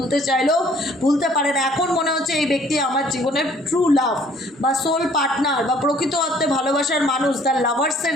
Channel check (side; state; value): both; normal; correlation 0.58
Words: চাইলেও ভুলতে পারে না। এখন মনে হচ্ছে এই ব্যক্তি আমার জীবনের ট্রু লাভ বা সোল পার্টনার বা প্রকৃত অর্থে ভালোবাসার মানুষ, তার লাভার্সের